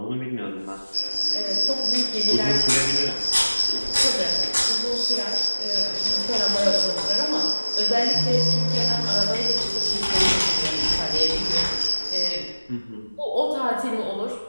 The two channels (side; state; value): both; inverted; correlation -1.00